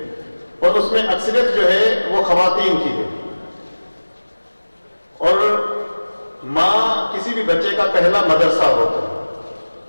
और उसमें अक्सरियत जो है वो खवातीन की है। और माँ किसी भी बच्चे का पहला मदरसा होता है।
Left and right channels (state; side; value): inverted; both; correlation -1.00